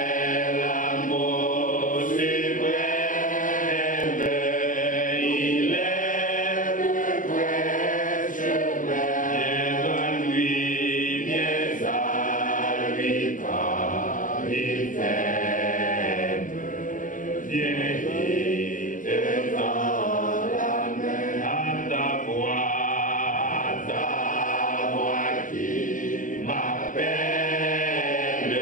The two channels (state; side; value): late; right; 0.38 ms